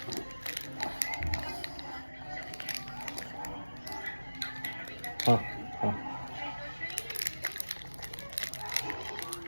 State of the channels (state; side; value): inverted; both; correlation -1.00